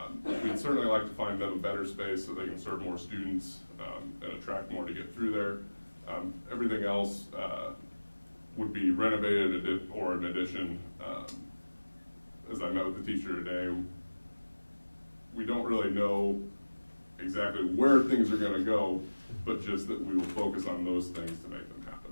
We'd certainly like to find them a better space so they can serve more students and attract more to get through there. Everything else would be renovated or an addition. As I met with the teacher today, we don't really know exactly where things are going to go, but just that we will focus on those things to make them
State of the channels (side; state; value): both; inverted; correlation -1.00